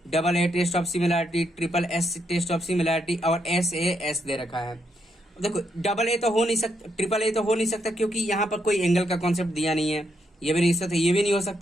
double A test of similarity, triple S test of similarity, और एस ए एस दे रखा है। देखो डबल ए तो हो नहीं सकता, ट्रिपल ए तो हो नहीं सकता, क्योंकि यहाँ पर कोई एंगल का कॉन्सेप्ट दिया नहीं है। ये भी नहीं हो सकता, ये भी नहीं हो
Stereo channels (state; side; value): normal; both; correlation 0.78